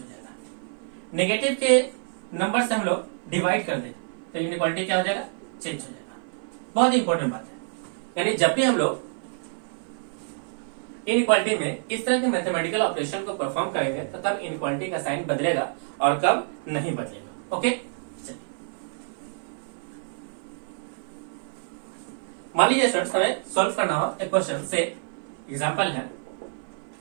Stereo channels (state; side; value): silent; left; 56 dB below the other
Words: जाएगा। नेगेटिव के नंबर से हम लोग डिवाइड कर दें तो इनइक्वालिटी क्या हो जाएगा, चेंज हो जाएगा। बहुत इंपॉर्टेंट बात है, यानी जब भी हम लोग इनइक्वालिटी में इस तरह के मैथमेटिकल ऑपरेशन को परफॉर्म करेंगे तो तब इनइक्वालिटी का साइन बदलेगा और कब नहीं बदलेगा। ओके, चलिए मान लीजिए स्टूडेंट्स हमें सॉल्व करना हो एक क्वेश्चन से। एग्जांपल है